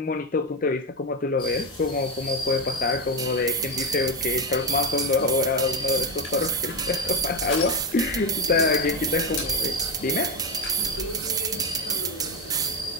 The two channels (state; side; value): normal; both; correlation 0.11